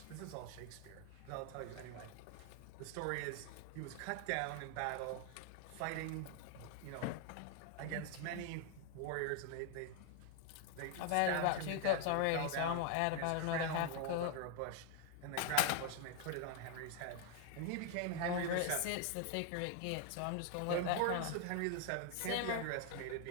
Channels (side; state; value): both; different; correlation 0.00